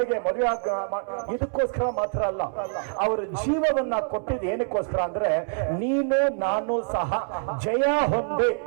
ಮದುವೆ ಇದಕ್ಕೋಸ್ಕರ ಮಾತ್ರ ಅಲ್ಲ. ಅವರ ಜೀವವನ್ನ ಕೊಟ್ಟಿದ್ದು ಏನಕ್ಕೋಸ್ಕರ ಅಂದ್ರೆ ನೀನು ನಾನು ಸಹ ಜಯ ಹೊಂದಿ,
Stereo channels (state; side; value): silent; left; 61 dB below the other